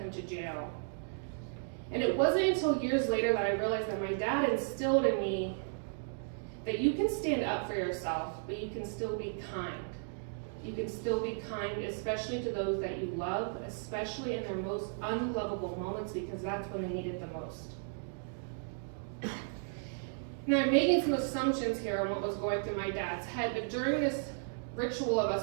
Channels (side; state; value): left; silent; digital silence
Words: to jail. And it wasn't until years later that I realized that my dad instilled in me that you can stand up for yourself, but you can still be kind. You can still be kind, especially to those that you love, especially in their most unlovable moments, because that's when they need it the most. Now, I'm making some assumptions here on what was going through my dad's head, but during this ritual of